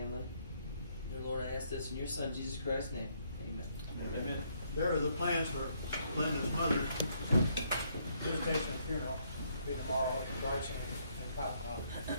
Dear Lord, I ask this in your Son, Jesus Christ's name. Amen. Amen. There are the plans for Linda's mother's visitation and funeral, be tomorrow in Bryson and Cottonmouth.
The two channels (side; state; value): both; inverted; correlation -0.71